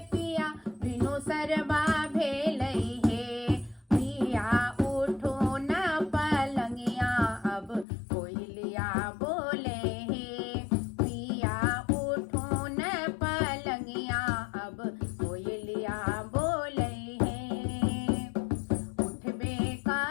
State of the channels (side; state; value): right; drops out; at 7.9 s